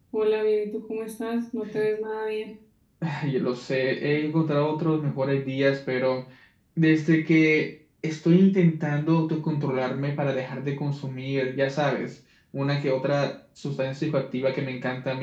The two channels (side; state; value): both; identical; correlation 1.00